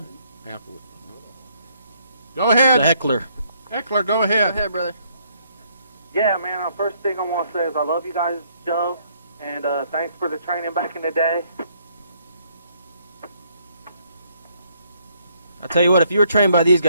Go ahead. The Heckler. Heckler, go ahead. Go ahead, brother. Yeah, man, first thing I want to say is I love you guys' show, and thanks for the training back in the day. I tell you what, if you were trained by these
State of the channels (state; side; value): inverted; both; correlation -0.68